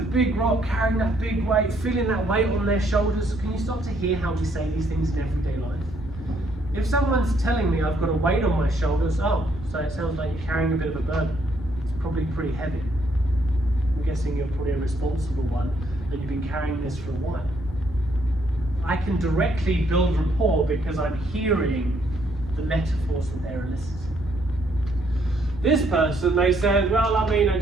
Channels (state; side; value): noise; right; rumble, 14 dB below the sound